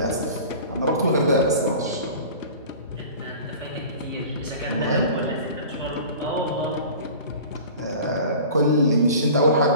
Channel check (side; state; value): both; inverted; correlation -0.40